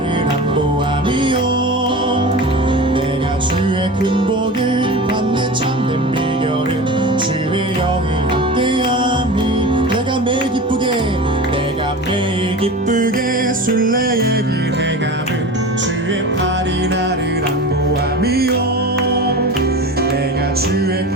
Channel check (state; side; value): normal; both; correlation 0.32